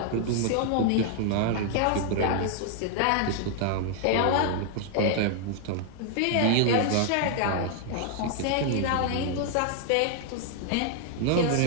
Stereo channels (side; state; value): both; different; correlation 0.00